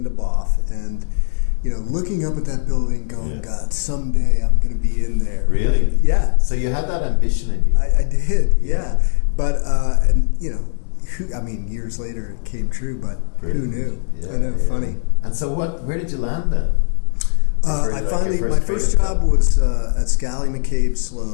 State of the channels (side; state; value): right; silent; digital silence